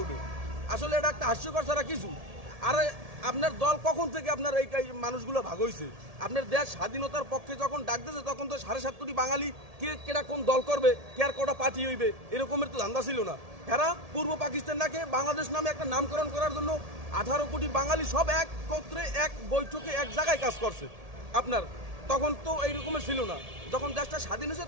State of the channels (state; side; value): late; left; 1.7 ms